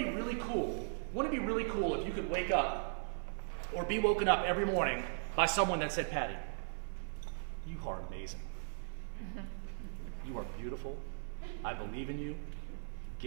be really cool? Wouldn't it be really cool if you could wake up or be woken up every morning by someone that said, Patty, you are amazing. You are beautiful. I believe in you.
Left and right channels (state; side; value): silent; left; 52 dB below the other